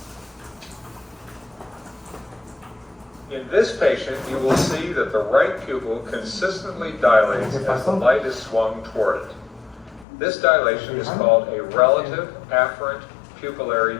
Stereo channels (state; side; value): drops out; right; at 10.1 s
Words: In this patient, you will see that the right pupil consistently dilates as the light is swung toward it. This dilation is called a relative afferent